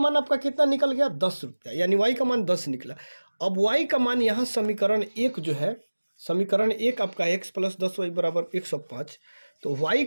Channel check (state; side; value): inverted; both; correlation -1.00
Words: आपका कितना निकल गया, 10 रुपया, यानी y का मान 10 निकला। अब y का मान यहाँ समीकरण 1 जो है, समीकरण 1 आपका x प्लस 10y बराबर 105। तो y